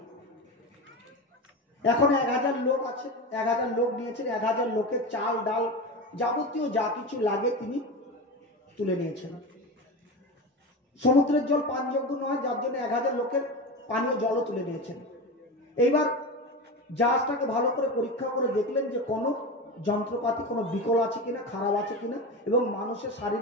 এখন 1000 লোক আছে, 1000 লোক নিয়েছেন, 1000 লোকের চাল ডাল যাবতীয় যা কিছু লাগে তিনি তুলে নিয়েছেন। সমুদ্রের জল পানযোগ্য নয়, যার জন্য 1000 লোকের পানীয় জলও তুলে নিয়েছেন। এইবার জাহাজটাকে ভালো করে পরীক্ষা করে দেখলেন যে কোনো যন্ত্রপাতি কোনো বিকল আছে কিনা, খারাপ আছে কিনা, এবং মানুষের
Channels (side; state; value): both; normal; correlation 0.24